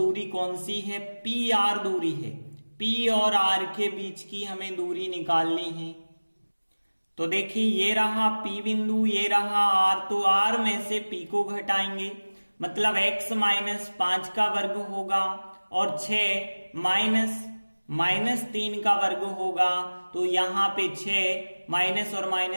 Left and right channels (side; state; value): both; inverted; correlation -1.00